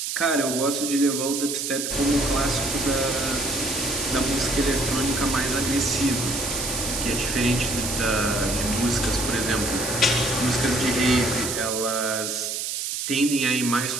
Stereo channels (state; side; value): noise; right; hiss, 3 dB below the sound